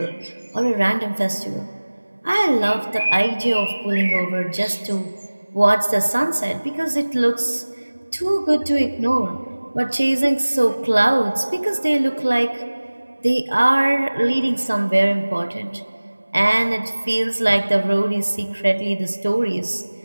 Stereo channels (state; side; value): inverted; both; correlation -1.00